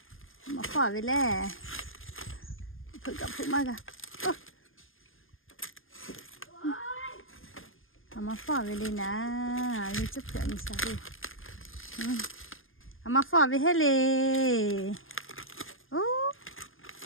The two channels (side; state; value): right; late; 0.59 ms